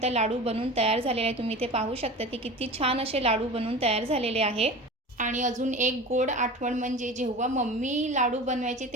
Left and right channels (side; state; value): both; normal; correlation 0.34